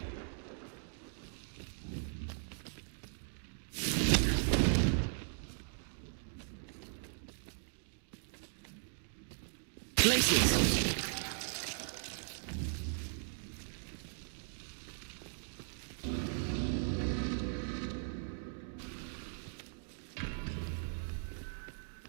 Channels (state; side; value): silent; left; digital silence